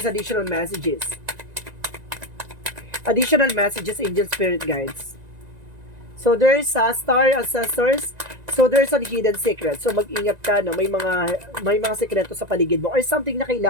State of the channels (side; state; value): left; late; 1.9 ms